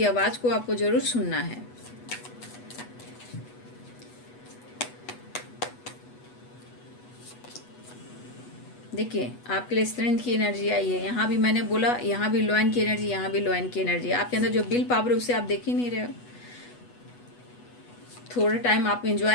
आवाज़ को आपको ज़रूर सुनना है। देखिए, आपके लिए स्ट्रेंथ की एनर्जी आई है। यहाँ भी मैंने बोला, यहाँ भी लॉयन की एनर्जी, यहाँ भी लॉयन की एनर्जी। आपके अंदर जो विल पावर है उसे आप देख ही नहीं रहे हो। थोड़ा टाइम आप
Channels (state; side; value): late; right; 8.2 ms